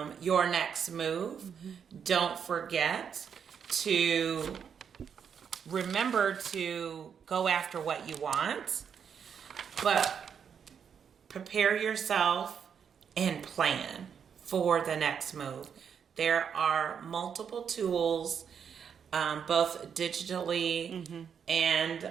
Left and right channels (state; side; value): quieter; left; 7.3 dB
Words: your next move, don't forget to remember to go after what you want, but prepare yourself and plan for the next move. There are multiple tools, both digitally and